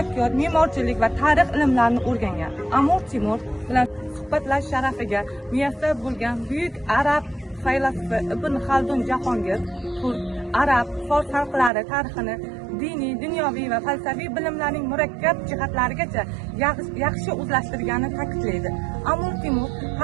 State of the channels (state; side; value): drops out; left; at 11.7 s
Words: me'morchilik va tarix ilmlarini o'rgangan. Amir Temur bilan suhbatlash sharafiga muyassar bo'lgan buyuk arab faylasufi Ibn Xaldun Jahongir arab, fors xalqlari tarixini diniy, dunyoviy va falsafiy bilimlarning murakkab jihatlarigacha yaxshi o'zlashtirganini ta'kidlaydi. Amir Temur